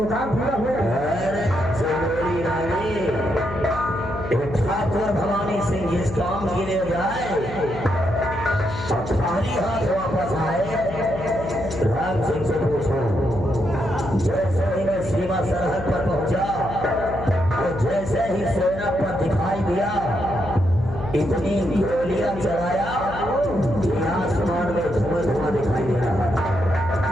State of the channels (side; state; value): left; noise; hum, 9 dB below the sound